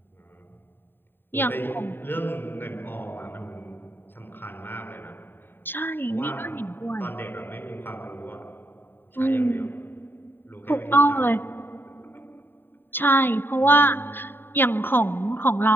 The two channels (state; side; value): late; right; 0.097 ms